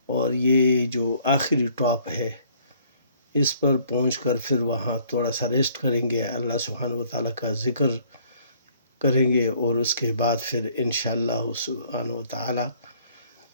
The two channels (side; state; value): both; inverted; correlation -0.60